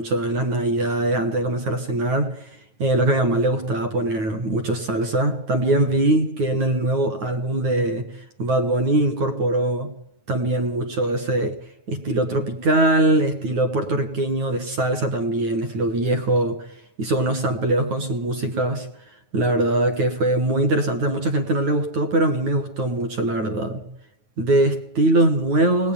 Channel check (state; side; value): late; left; 9.3 ms